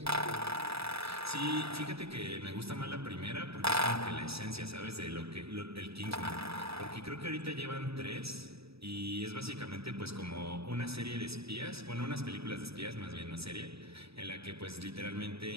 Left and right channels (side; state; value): left; late; 0.77 ms